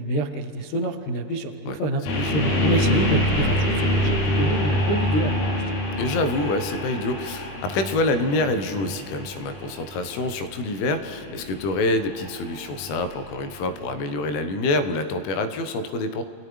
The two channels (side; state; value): right; late; 21 ms